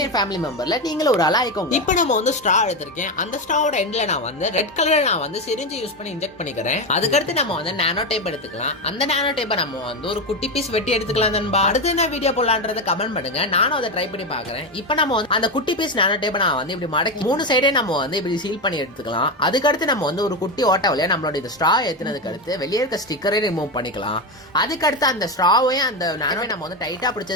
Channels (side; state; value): both; normal; correlation 0.13